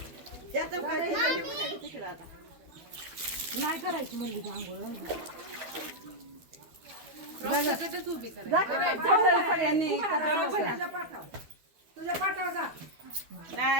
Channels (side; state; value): left; late; 13 ms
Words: नाही करायची म्हणली सगळ्यांनी तुझ्या पाठाव जा